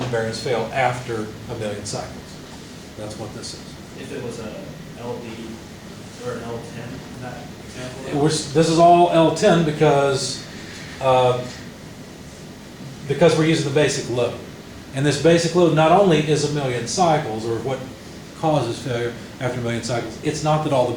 the bearings fail after 1 million cycles. That's what this is. If it was a LD or an L10, in that example? This is all L10 because we're using the basic load. And this basic load not only is 1 million cycles, or what causes failure after 1 million cycles, it's not that all the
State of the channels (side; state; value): both; identical; correlation 1.00